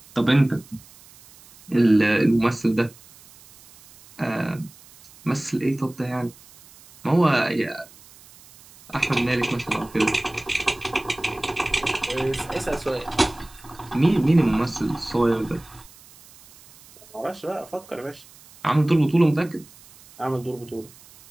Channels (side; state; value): right; noise; hiss, 24 dB below the sound